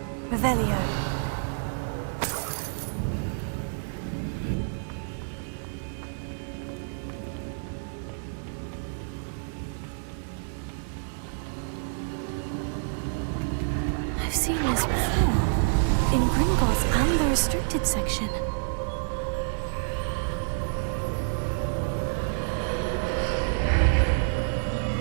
Revelio. I've seen this before. In Gringotts and the restricted section.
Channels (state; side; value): silent; left; 59 dB below the other